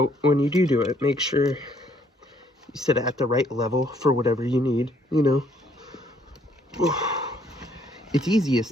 when you do it, make sure you sit at the right level for whatever you need, you know. It's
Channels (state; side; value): normal; both; correlation 0.65